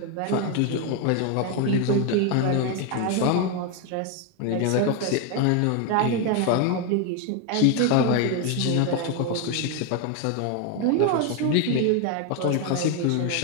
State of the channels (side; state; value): both; different; correlation 0.01